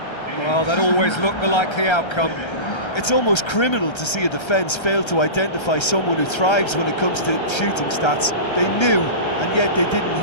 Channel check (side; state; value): right; late; 1.3 ms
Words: Well, that always looked the likely outcome. It's almost criminal to see a defence fail to identify someone who thrives when it comes to shooting stats. They knew, and yet they didn't